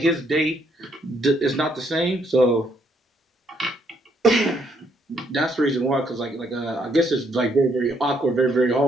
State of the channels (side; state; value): both; normal; correlation 0.71